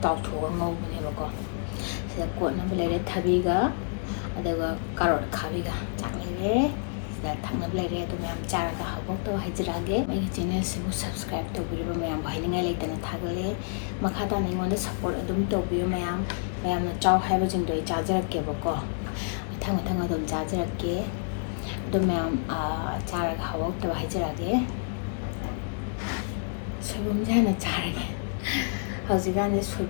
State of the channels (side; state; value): right; silent; digital silence